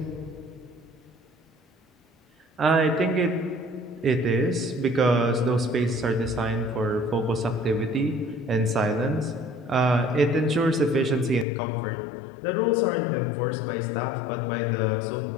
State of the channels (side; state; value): right; drops out; at 11.5 s